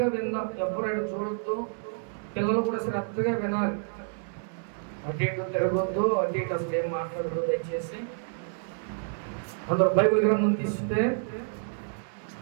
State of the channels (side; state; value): left; silent; 59 dB below the other